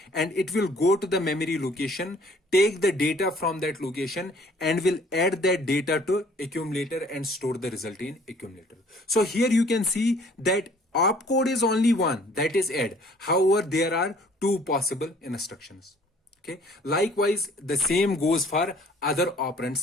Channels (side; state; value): both; normal; correlation 0.56